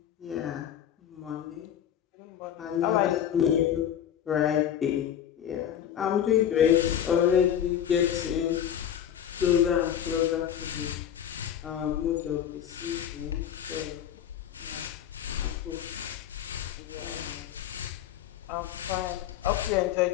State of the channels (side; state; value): right; quieter; 9.9 dB